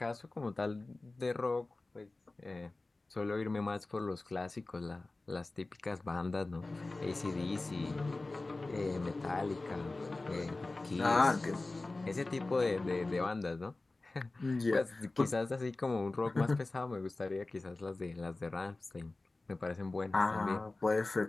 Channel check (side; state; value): right; quieter; 3.2 dB